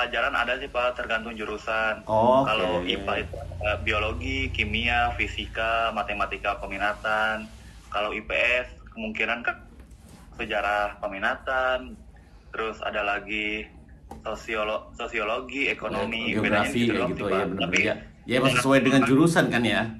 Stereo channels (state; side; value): identical; both; correlation 1.00